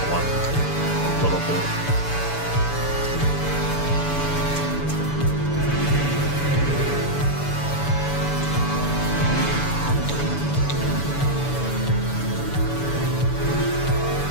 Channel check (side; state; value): right; late; 7.0 ms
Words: one a little bit.